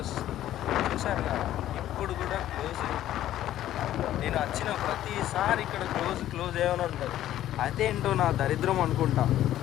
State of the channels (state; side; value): quieter; right; 12.8 dB